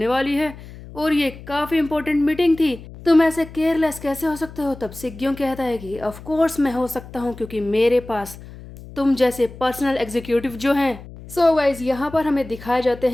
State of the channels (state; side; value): noise; left; hum, 16 dB below the sound